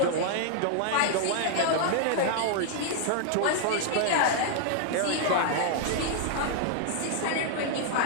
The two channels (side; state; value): both; different; correlation -0.01